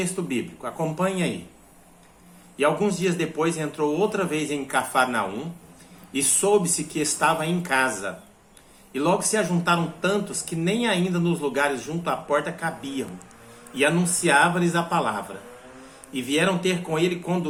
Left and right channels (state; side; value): identical; both; correlation 1.00